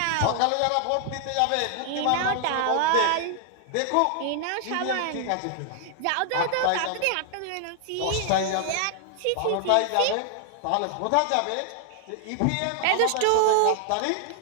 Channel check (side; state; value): both; different; correlation 0.00